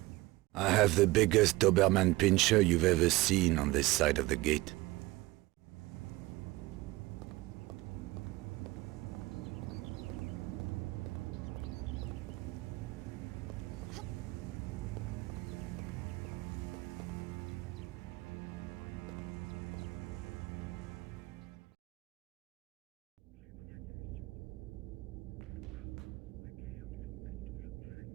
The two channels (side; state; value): left; quieter; 20.5 dB